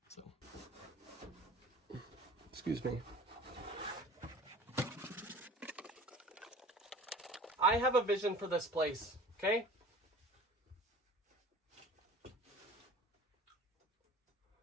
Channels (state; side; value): normal; both; correlation 0.44